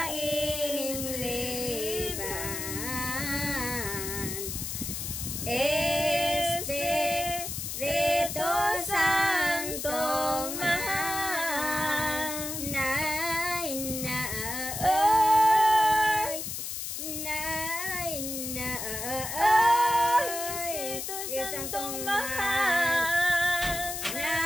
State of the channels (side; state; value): left; noise; hiss, 5 dB below the sound